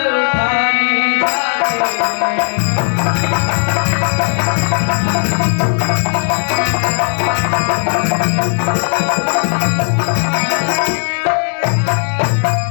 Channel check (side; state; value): right; silent; 70 dB below the other